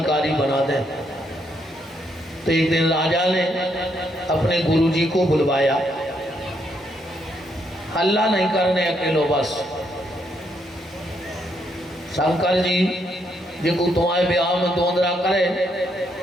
बना दें। तो एक दिन राजा ने अपने गुरुजी को बुलवाया। हल्ला नहीं करने अकेलो, बस शंकर जी जिनको तुम्हारे ब्याह में दोंदरा करे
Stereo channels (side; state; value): both; normal; correlation 0.75